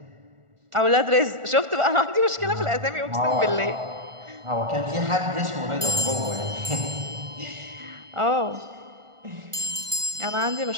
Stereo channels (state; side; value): late; left; 1.4 ms